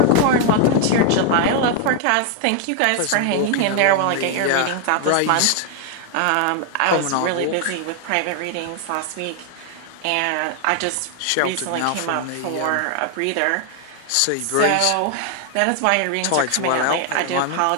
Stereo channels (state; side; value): different; both; correlation 0.00